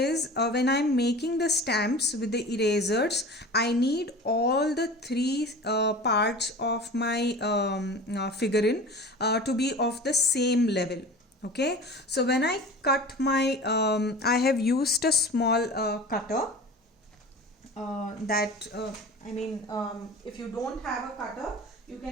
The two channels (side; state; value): both; normal; correlation 0.37